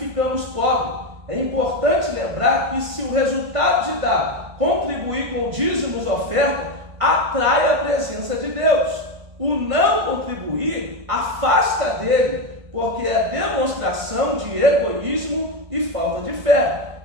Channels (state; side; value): late; left; 1.5 ms